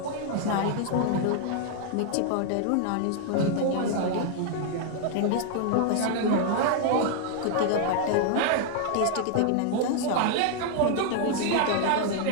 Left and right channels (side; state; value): both; different; correlation 0.00